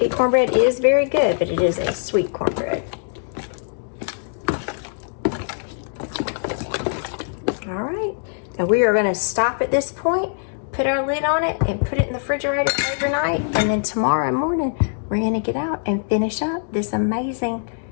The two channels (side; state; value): right; silent; digital silence